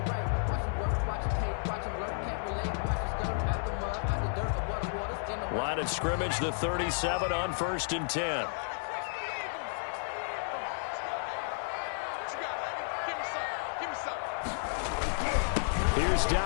Line of scrimmage, the 37 on 1st and 10. Here's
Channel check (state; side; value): silent; right; digital silence